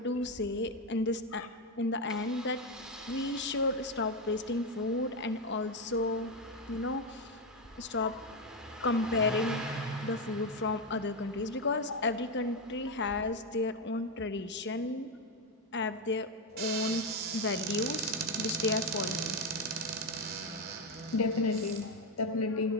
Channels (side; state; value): both; normal; correlation 0.08